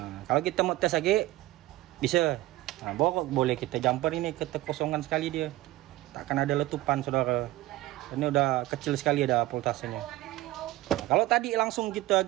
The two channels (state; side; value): quieter; left; 17.1 dB